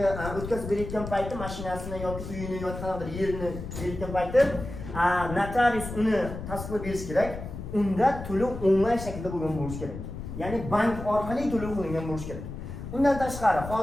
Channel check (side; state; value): left; noise; rumble, 9 dB below the sound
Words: o'tkazib berayotgan payti, mashinasini yoki uyini yoki qanaqadir yerini berayotgan payti, notarius uni tasdiqlab berish kerak. Unda to'lov onlayn shaklda bo'lgan bo'lishi kerak. Ya'ni bank orqali to'lov qilingan bo'lishi kerak. Undan tashqari,